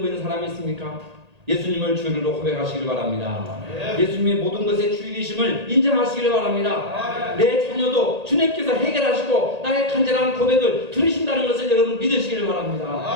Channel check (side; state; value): left; late; 1.8 ms